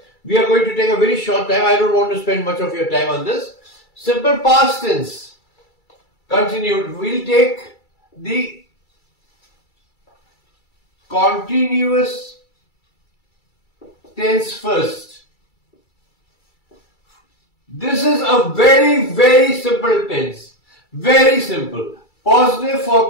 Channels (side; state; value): right; late; 2.3 ms